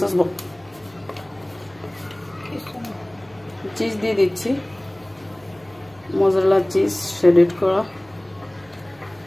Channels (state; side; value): noise; right; hum, 30 dB below the sound